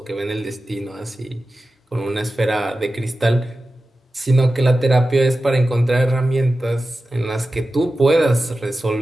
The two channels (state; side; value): normal; both; correlation 0.94